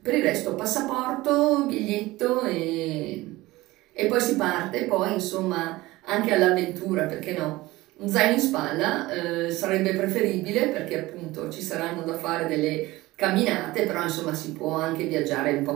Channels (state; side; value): quieter; left; 19.2 dB